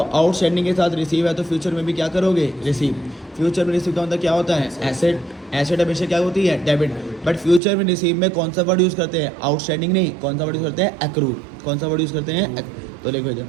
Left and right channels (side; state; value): left; drops out; at 7.6 s